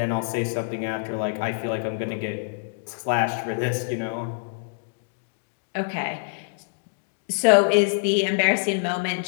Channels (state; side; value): silent; right; digital silence